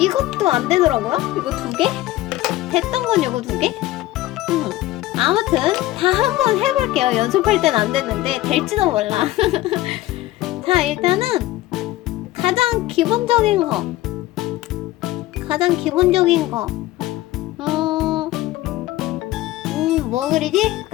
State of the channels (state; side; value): quieter; right; 16.4 dB